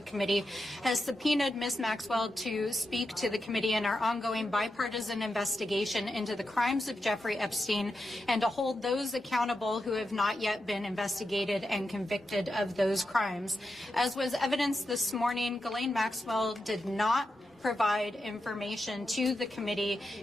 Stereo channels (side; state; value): both; normal; correlation 0.88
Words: Committee has subpoenaed Ms. Maxwell to speak to the committee in our ongoing bipartisan investigation into the crimes of Jeffrey Epstein and to hold those accountable who have not yet been investigated and convicted of those crimes. As was evidenced this morning, Ghislaine Maxwell did not provide information to the committee